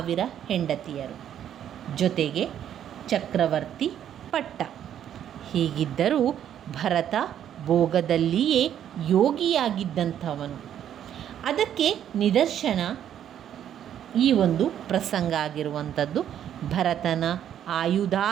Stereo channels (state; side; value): quieter; left; 10.1 dB